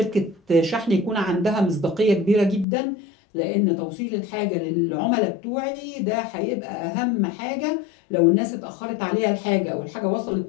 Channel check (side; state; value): right; drops out; at 2.7 s